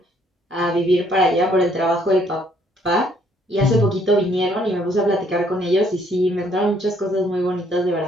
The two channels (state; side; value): normal; both; correlation 0.66